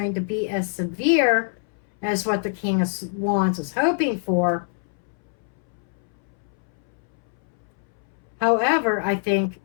to be as severe as what the King of Wands is hoping for. However, I think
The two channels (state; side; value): silent; right; 62 dB below the other